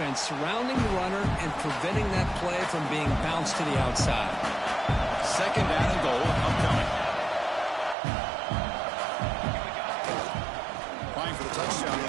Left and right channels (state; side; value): drops out; left; at 8.0 s